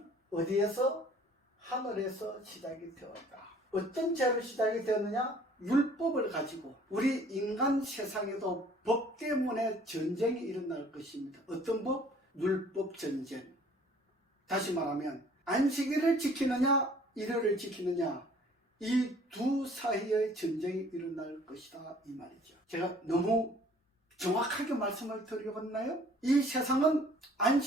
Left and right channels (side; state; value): both; normal; correlation 0.54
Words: 어디에서? 하늘에서 시작이 되었다. 어떤 죄로 시작이 되었느냐? 율법을 가지고 우리 인간 세상에도 법 때문에 전쟁이 일어날 것입니다. 어떤 법? 율법 전쟁. 다시 말하면 안식일을 지키느냐 일요일을 지키느냐 이 두 사이의 전쟁이 일어날 것이다 이 말이죠. 제가 너무 정확하게 말씀을 드려봤나요? 이 세상은